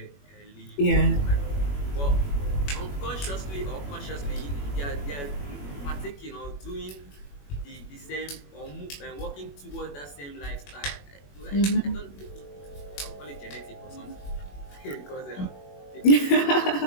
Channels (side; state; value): right; late; 21 ms